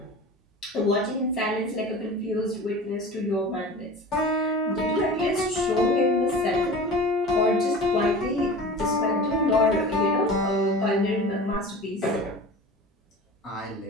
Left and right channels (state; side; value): normal; both; correlation 0.36